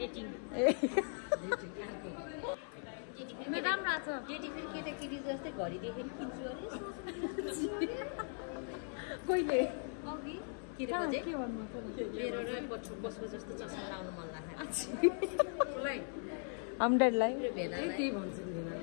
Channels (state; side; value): silent; right; 52 dB below the other